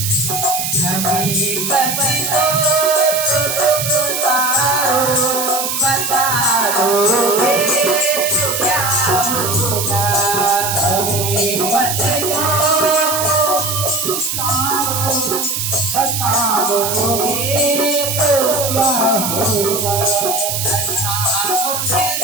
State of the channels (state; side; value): noise; right; hiss, 2 dB below the sound